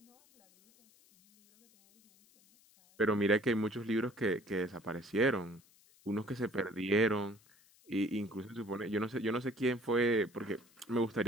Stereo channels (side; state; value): left; noise; hiss, 29 dB below the sound